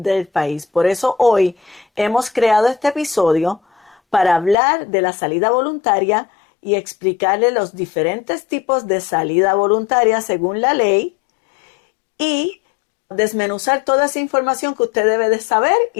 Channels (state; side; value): drops out; right; at 4.5 s